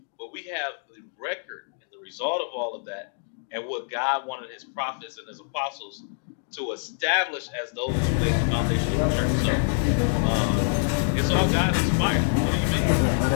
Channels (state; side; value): silent; right; digital silence